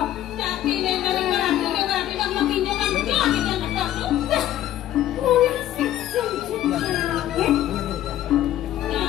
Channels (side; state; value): right; quieter; 12.8 dB